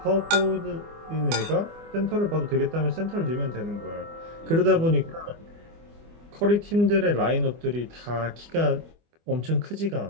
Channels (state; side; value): late; left; 24 ms